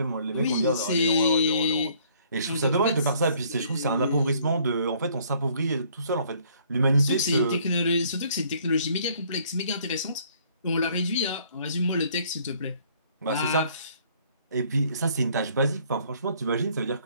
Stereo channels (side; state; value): both; inverted; correlation -0.61